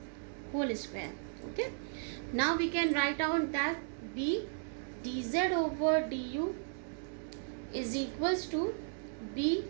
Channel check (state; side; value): silent; left; digital silence